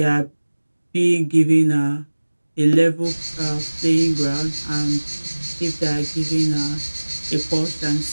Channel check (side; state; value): both; inverted; correlation -1.00